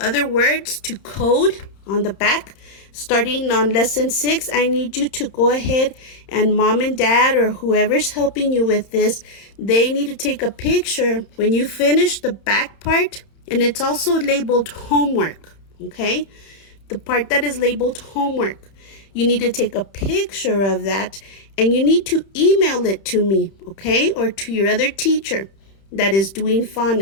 words to code on the back. Starting on lesson 6, I need you to go ahead and mom and dad or whoever's helping you with this, they need to take a picture when you finish the back part, and it's also labeled homework, okay? The part that is labeled homework. You need to take a picture of that and you need to email it to me, okay? Or to your other teacher that is doing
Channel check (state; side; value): late; right; 31 ms